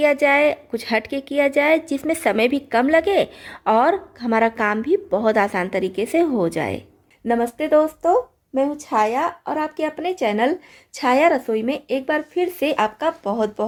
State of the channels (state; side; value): identical; both; correlation 1.00